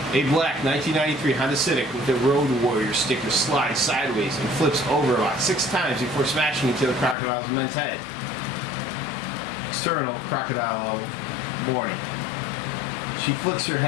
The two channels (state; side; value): drops out; right; at 7.2 s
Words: A black 1993 Honda Civic with a Road Warrior sticker slides sideways and flips over about 6 times before smashing into the crocodile's immense head. External crocodile warning. She flicks her